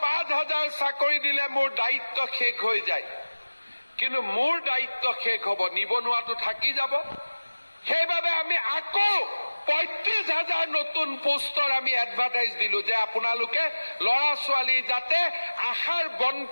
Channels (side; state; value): both; inverted; correlation -1.00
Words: 5,000 চাকৰি দিলে মোৰ দায়িত্ব শেষ হৈ যায়। কিন্তু মোৰ দায়িত্ব শেষ হ'ব, নিবনুৱাটো থাকি যাব। সেইবাবে আমি আকৌ 35,000 নতুন পোষ্টৰ আমি এডভাৰটাইজ দিলো যে আপোনালোকে ল'ৰা ছোৱালী যাতে আশাৰ